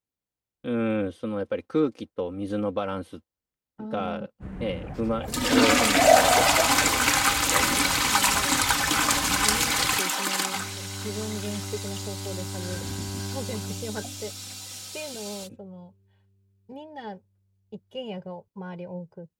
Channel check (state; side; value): identical; both; correlation 1.00